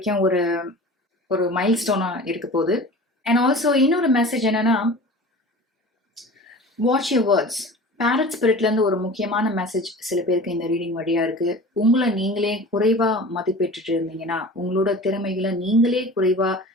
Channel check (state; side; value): normal; both; correlation 0.38